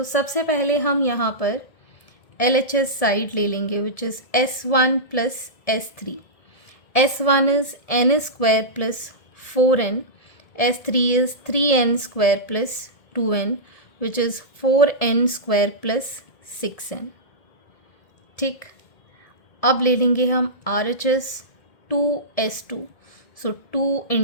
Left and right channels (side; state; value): right; late; 1.7 ms